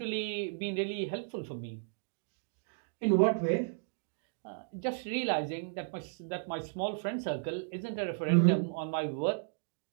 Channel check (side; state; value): left; silent; digital silence